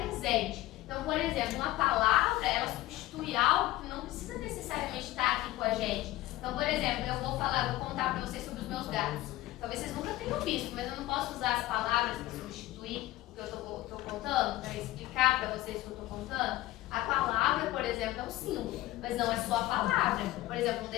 Então, por exemplo, uma palavra, ela substitui algo que não precisa necessariamente estar aqui com a gente. Então, por exemplo, eu vou contar para vocês sobre os meus gatos. Talvez vocês nunca tenham visto, mas eu não posso usar as palavras para substituir o que eu estou contando, para explicar para vocês o que eu estou contando. A palavra, por exemplo, é um símbolo, mas não é só a palavra. Por exemplo, um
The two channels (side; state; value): right; quieter; 16.7 dB